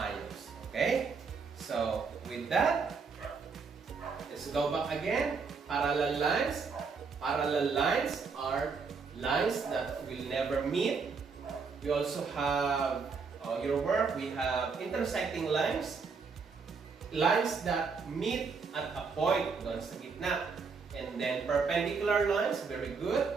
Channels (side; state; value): left; quieter; 5.1 dB